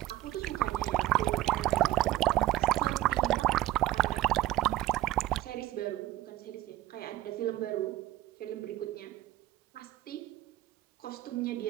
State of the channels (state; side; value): quieter; left; 15.4 dB